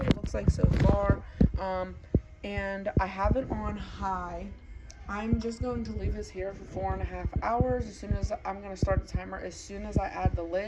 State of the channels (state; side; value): identical; both; correlation 1.00